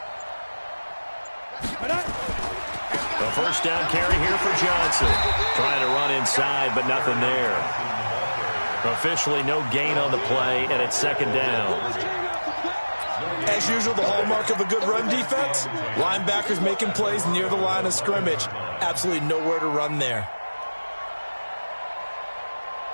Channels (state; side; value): inverted; both; correlation -1.00